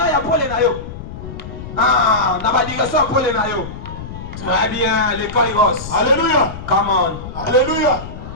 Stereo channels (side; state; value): left; noise; rumble, 11 dB below the sound